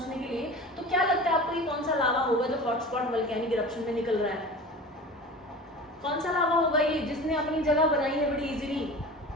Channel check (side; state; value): both; normal; correlation 0.36